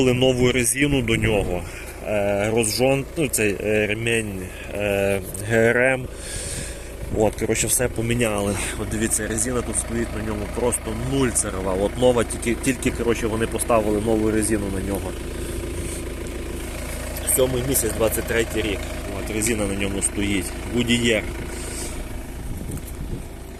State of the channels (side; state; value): both; identical; correlation 1.00